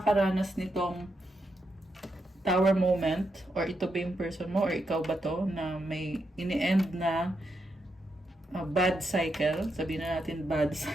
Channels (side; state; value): both; normal; correlation 0.83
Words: nitong tower moment, or ito ba yung person mo, or ikaw ba to, na may ini-end na bad cycle, sabihin na natin bad